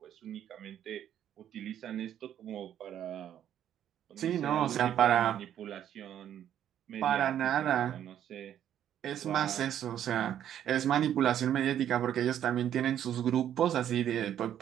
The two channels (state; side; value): quieter; left; 10.4 dB